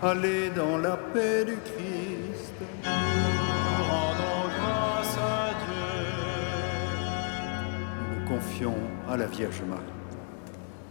Allez dans la paix du Christ. Rendons grâce à Dieu. Nous nous confions à la Vierge Marie.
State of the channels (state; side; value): quieter; right; 38.8 dB